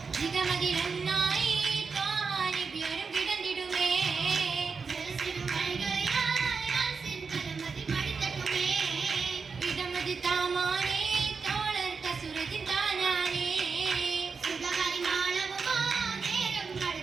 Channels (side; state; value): left; quieter; 5.1 dB